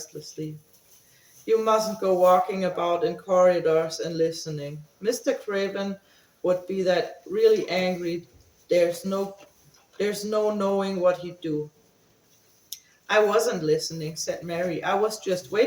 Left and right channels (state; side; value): identical; both; correlation 1.00